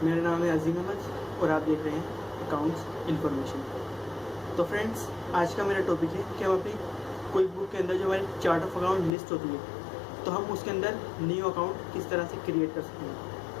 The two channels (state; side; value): drops out; right; at 9.1 s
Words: मेरा नाम है अजीम अहमद और आप देख रहे हैं अकाउंट्स इन्फॉर्मेशन। तो फ्रेंड्स, आज का मेरा टॉपिक है कि हम अपनी कोई बुक के अंदर जो हमारी चार्ट ऑफ अकाउंट लिस्ट होती है तो हम उसके अंदर न्यू अकाउंट किस तरह से क्रिएट कर सकते हैं।